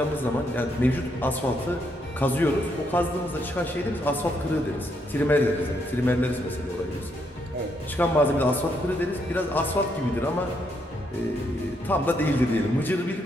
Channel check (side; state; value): both; normal; correlation 0.76